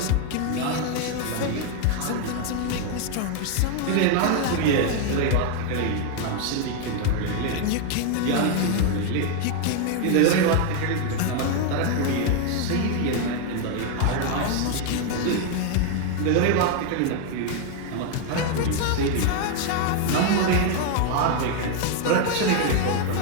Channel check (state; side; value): different; both; correlation 0.01